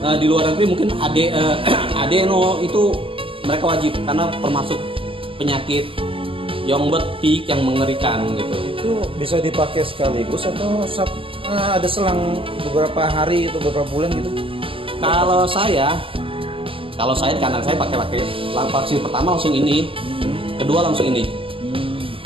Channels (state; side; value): late; left; 0.26 ms